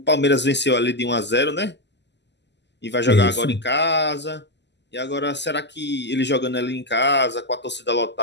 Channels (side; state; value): right; late; 0.51 ms